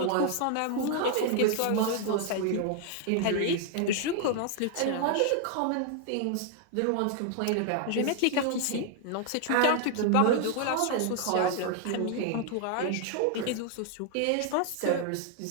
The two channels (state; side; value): different; both; correlation 0.00